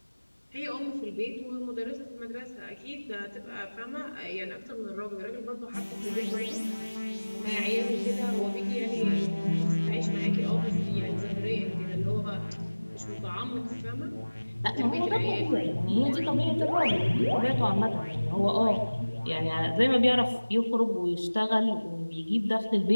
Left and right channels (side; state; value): both; inverted; correlation -1.00